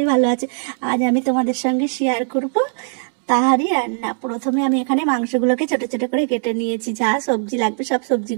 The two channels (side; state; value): left; silent; 59 dB below the other